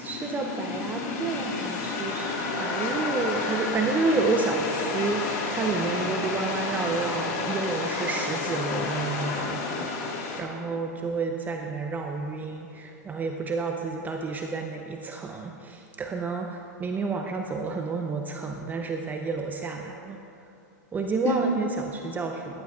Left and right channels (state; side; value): normal; both; correlation 0.33